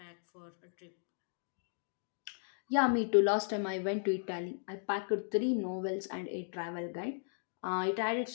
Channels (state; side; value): silent; right; digital silence